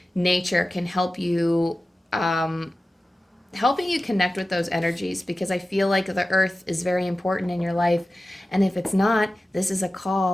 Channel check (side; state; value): both; normal; correlation 0.95